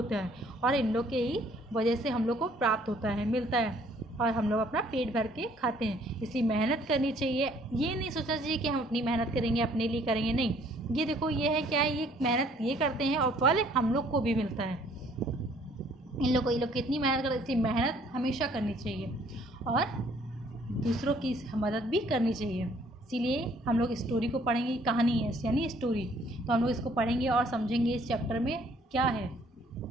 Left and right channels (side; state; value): both; normal; correlation 0.61